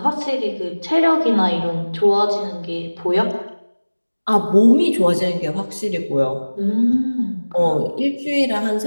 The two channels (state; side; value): inverted; both; correlation -1.00